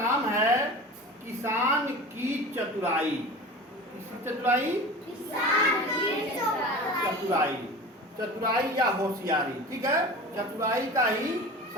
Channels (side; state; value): both; normal; correlation 0.34